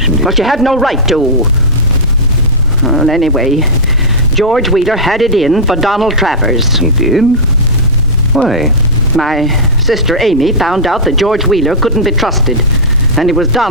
it. But you had no right to. Well, anyway, George Wheeler had it in for Donald Travers. He did? Why? My sister Amy found out that George Wheeler couldn't be trusted, and it was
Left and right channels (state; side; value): normal; both; correlation -0.10